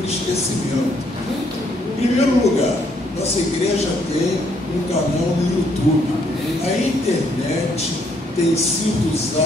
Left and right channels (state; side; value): normal; both; correlation 0.70